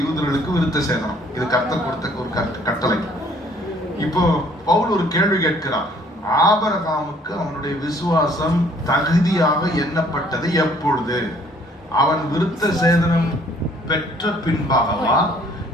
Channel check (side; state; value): both; normal; correlation 0.60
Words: யூதர்களுக்கு விருத்த சேதனம். இது கர்த்தர் கொடுத்த ஒரு கட்டளை. இப்போ பவுல் ஒரு கேள்வி கேட்கிறார். ஆபிரகாமுக்கு அவனுடைய விசுவாசம் தகுதியாக எண்ணப்பட்டது எப்பொழுது? அவன் விருத்த சேதனம் பெற்ற பின்பாகவா,